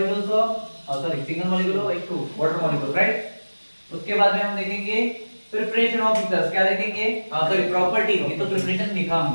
of sorry single molecule of H2 water molecule, right. उसके बाद में हम देखेंगे प्रिपरेशन ऑफ ईथर्स, क्या देखेंगे, सॉरी प्रॉपर्टी, ये तो प्रिपरेशन लिखा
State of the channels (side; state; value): both; inverted; correlation -1.00